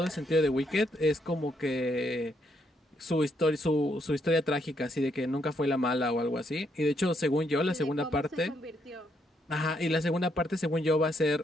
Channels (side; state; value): both; normal; correlation 0.75